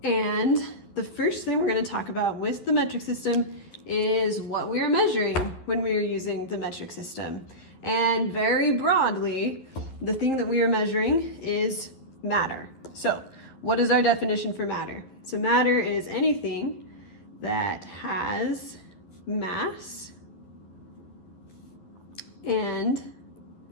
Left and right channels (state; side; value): late; right; 11 ms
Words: And the first thing we're going to talk about with the metric system is what we are measuring when we are using the metric system. And very broadly, the thing that we are measuring is matter. So what is our definition for matter? So matter is anything that has mass and